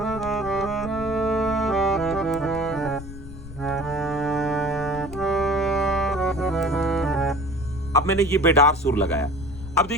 अब मैंने ये बेडार सुर लगाया। अब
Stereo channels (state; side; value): noise; left; rumble, 12 dB below the sound